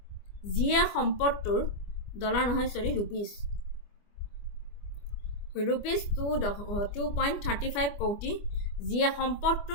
যিয়ে সম্পদটোৰ ৰুপিজ 2.35 কোটি, যিয়ে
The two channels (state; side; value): late; right; 25 ms